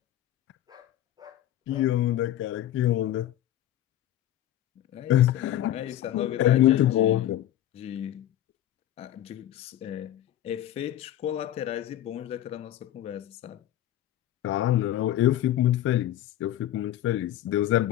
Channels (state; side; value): quieter; right; 12.6 dB